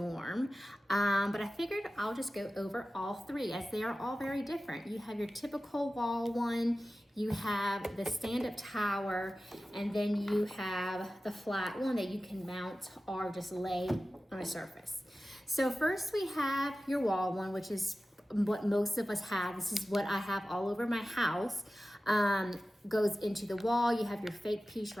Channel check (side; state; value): both; normal; correlation 0.95